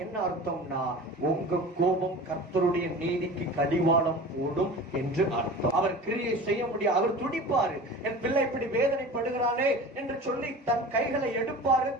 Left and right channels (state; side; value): normal; both; correlation 0.37